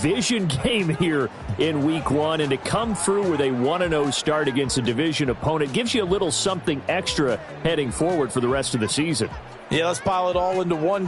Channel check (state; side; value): identical; both; correlation 1.00